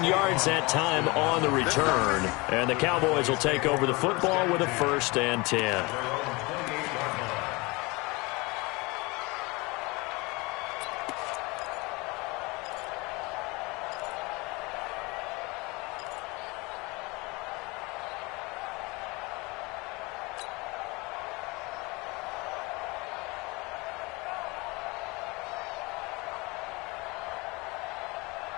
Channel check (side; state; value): right; quieter; 25.4 dB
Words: yards that time on the return. And the Cowboys will take over the football with a 1st and 10.